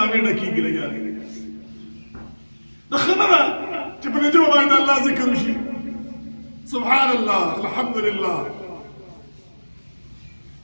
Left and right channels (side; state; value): both; inverted; correlation -1.00